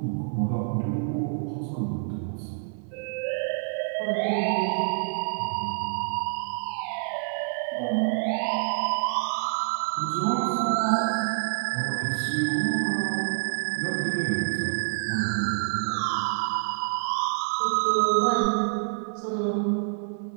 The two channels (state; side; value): silent; left; 60 dB below the other